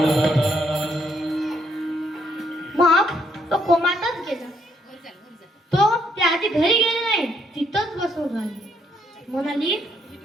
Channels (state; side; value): normal; both; correlation 0.72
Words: मग तो कोमातच गेला. तो त्या आधी घरी गेले नाही, तिथंच बसून राहिली. म्हणाली,